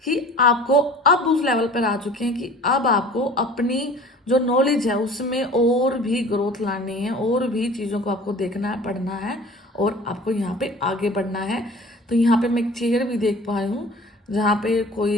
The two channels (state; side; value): normal; both; correlation 0.44